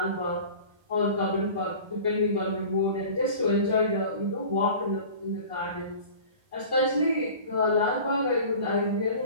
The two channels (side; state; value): left; late; 1.3 ms